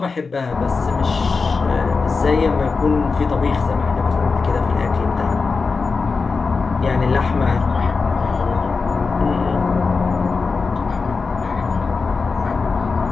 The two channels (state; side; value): quieter; right; 4.5 dB